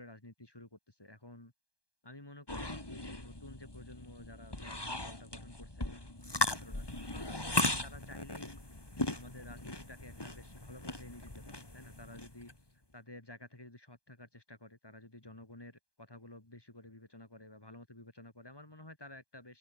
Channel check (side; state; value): right; late; 1.2 ms